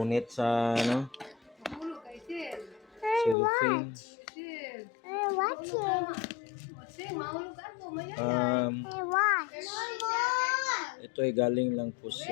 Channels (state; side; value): drops out; right; at 3.4 s